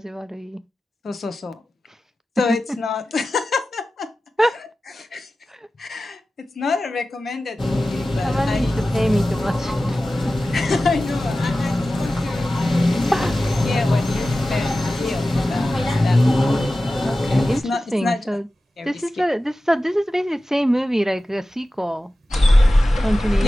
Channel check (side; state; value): both; normal; correlation 0.95